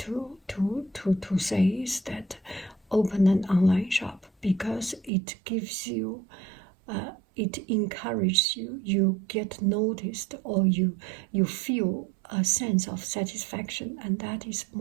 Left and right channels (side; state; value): left; drops out; at 5.1 s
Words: say is that open an online shop, because it gives you, it encourages you, you get noticed, or you feel a sense of satisfaction, and that is